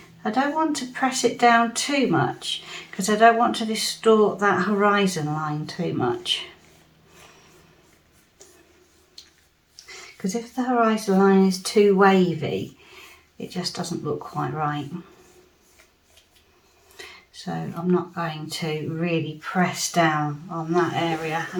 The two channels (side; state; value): both; identical; correlation 1.00